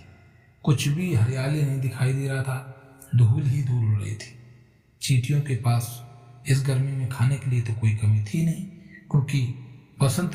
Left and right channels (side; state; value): both; identical; correlation 1.00